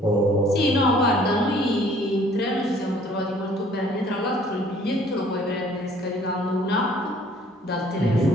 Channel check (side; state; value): both; normal; correlation 0.57